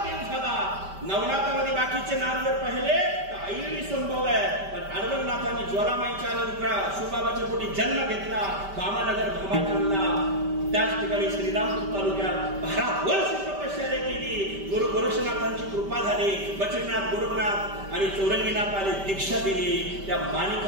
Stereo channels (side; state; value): left; late; 5.1 ms